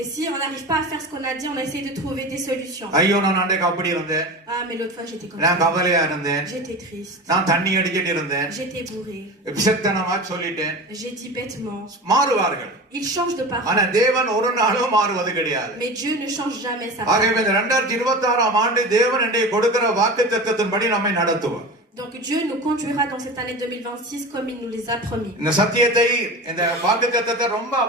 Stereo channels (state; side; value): normal; both; correlation 0.31